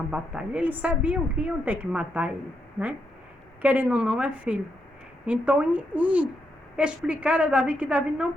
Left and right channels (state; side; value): normal; both; correlation 0.80